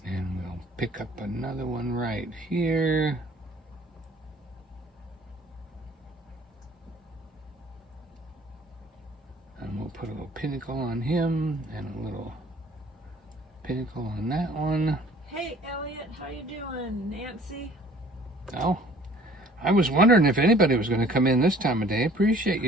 and we'll pick up another one right here. And we'll put a little pinnacle on him and a little pinnacle on that one. Hey, Elliot, how you doing? Nancy? Oh, I was wondering if anybody was going to come in this time of day. Appreciate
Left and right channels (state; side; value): normal; both; correlation 0.53